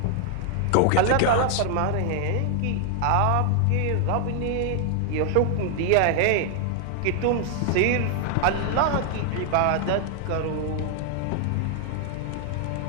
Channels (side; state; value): both; different; correlation 0.00